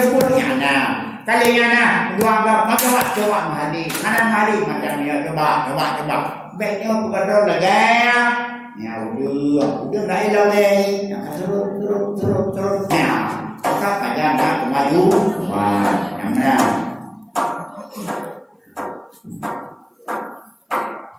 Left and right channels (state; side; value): identical; both; correlation 1.00